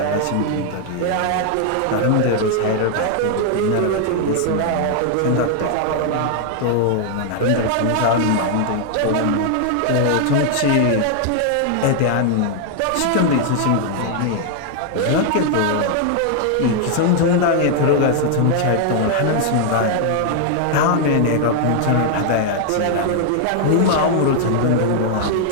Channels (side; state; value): both; different; correlation 0.00